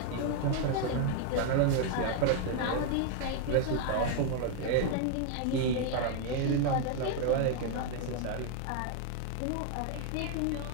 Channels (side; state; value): both; different; correlation 0.00